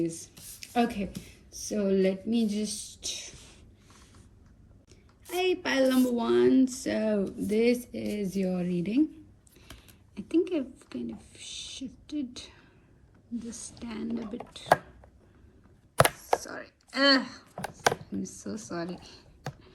Okay, so let me just... Hi, pile number 1. So this is your reading. I think I've kind of shifted the stand a bit. Sorry. I'm so sorry.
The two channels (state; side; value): identical; both; correlation 1.00